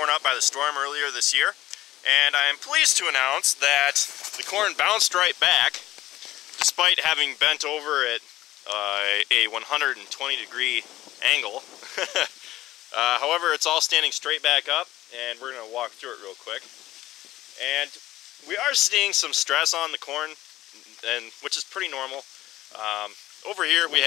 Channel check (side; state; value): right; quieter; 15.5 dB